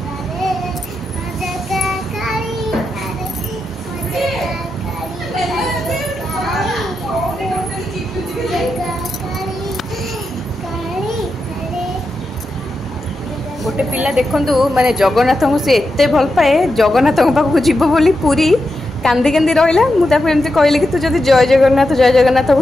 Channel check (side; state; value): both; normal; correlation 0.88